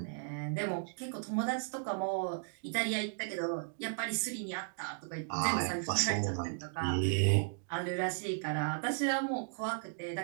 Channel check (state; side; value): silent; left; digital silence